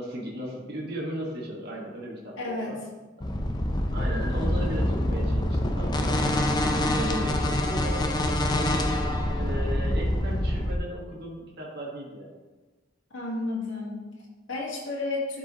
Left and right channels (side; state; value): both; normal; correlation 0.74